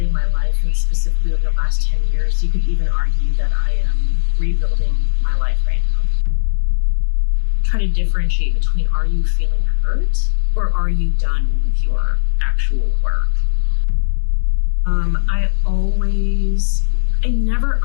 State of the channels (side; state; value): right; silent; digital silence